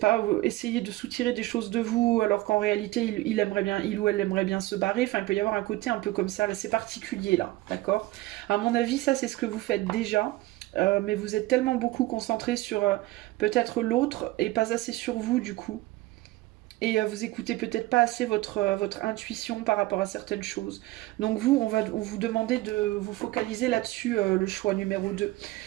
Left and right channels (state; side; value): quieter; left; 18.5 dB